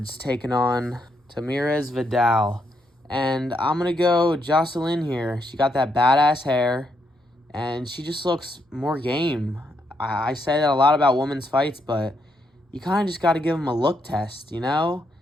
taking on Tamirez Vidal. And I'm going to go Jocelyn here. She got that badass hair, and she just looks more game. I say that a lot about women's fights, but you kind of just got to give them a look test, you know?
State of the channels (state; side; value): normal; both; correlation 0.77